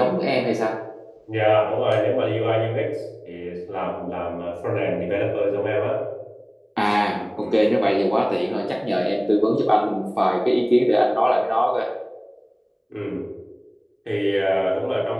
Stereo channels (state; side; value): identical; both; correlation 1.00